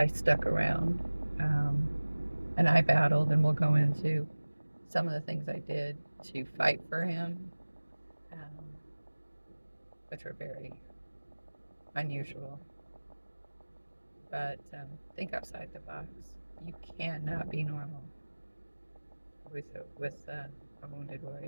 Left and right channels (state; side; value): inverted; both; correlation -1.00